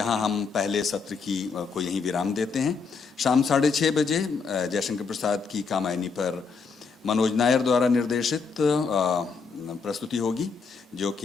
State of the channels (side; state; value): right; quieter; 5.1 dB